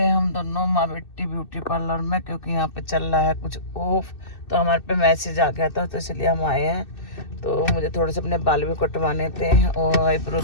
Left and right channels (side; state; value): right; late; 2.6 ms